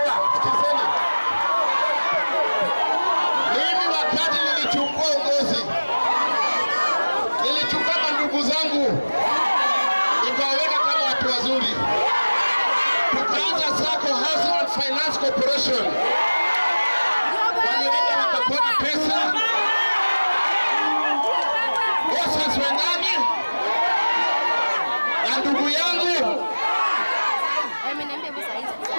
sikizeni. Mimi wakati nilichukua uongozi, nilichukua ndugu zangu nikawaweka kama watu wazuri, tukaanza Sacco Housing and Finance Corporation. Walienda wakapona pesa, bosses wendani na ndugu yangu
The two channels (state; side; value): inverted; both; correlation -1.00